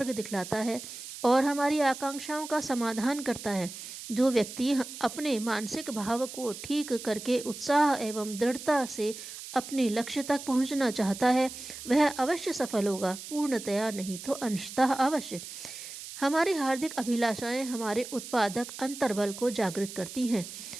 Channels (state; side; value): noise; right; hiss, 11 dB below the sound